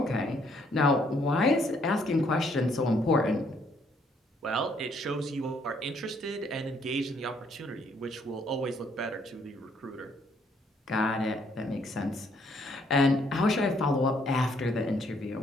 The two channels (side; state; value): both; normal; correlation 0.68